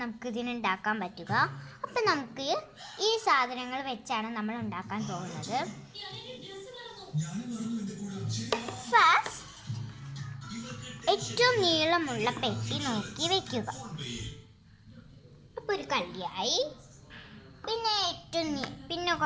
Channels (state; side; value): identical; both; correlation 1.00